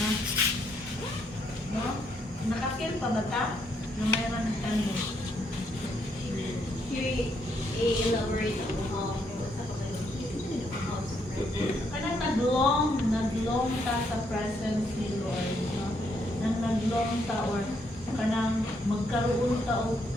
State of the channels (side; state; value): both; normal; correlation 0.74